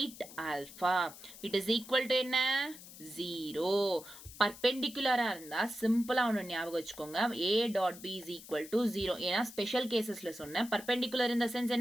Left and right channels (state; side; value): noise; left; hiss, 16 dB below the sound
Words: alpha. It is equal to என்ன 0. பர்பெண்டிகுலரா இருந்தா சிம்பிளா ஒன்று ஞாபகம் வச்சுக்கோங்க, a dot b is equal to 0. ஏன்னா ஸ்பெஷல் கேசஸ்ல சொன்னேன், பர்பெண்டிகுலர் இந்த சென்ஸ்